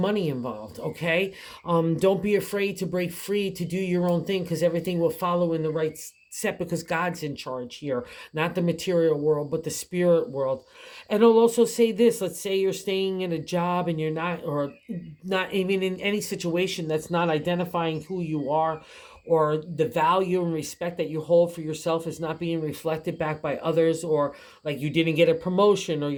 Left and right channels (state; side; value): identical; both; correlation 1.00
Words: involved. Okay, don't be afraid to break free to do your own thing, because everything will follow in the right set, because God's in charge here, not the material world, but the spirit world. And I'll also say this. Let's say you're staying in a job and you're not, or not even in any situation that's not identifying who you are, or the value and respect that you hold for yourself is not being reflected back by others, or like you didn't get a promotion, or